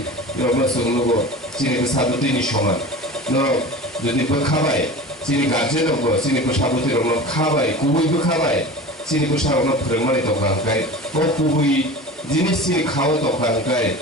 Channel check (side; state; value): both; normal; correlation 0.34